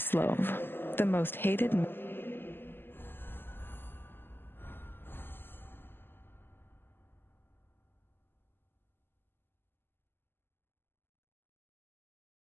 the most hated.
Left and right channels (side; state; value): right; late; 0.10 ms